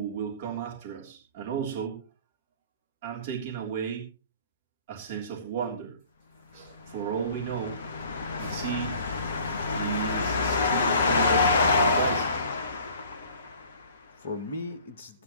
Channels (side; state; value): both; inverted; correlation -0.51